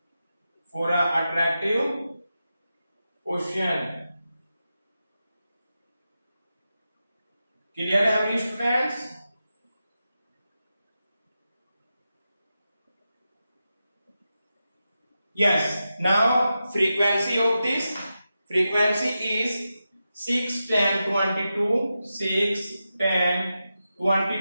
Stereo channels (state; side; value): inverted; both; correlation -0.90